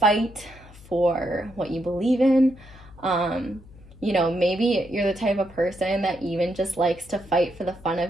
for what you believe in. You know, maybe you're the type of person that even just likes to fight for the fun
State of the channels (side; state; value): left; noise; hum, 21 dB below the sound